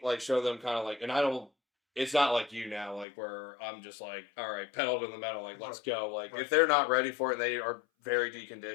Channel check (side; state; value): right; drops out; at 3.1 s